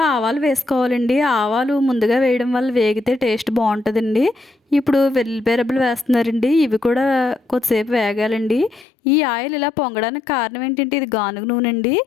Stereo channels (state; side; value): drops out; right; at 8.8 s